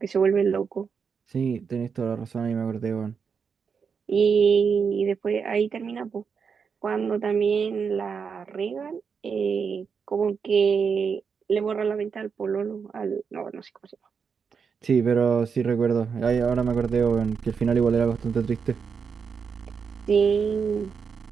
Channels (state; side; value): quieter; left; 6.1 dB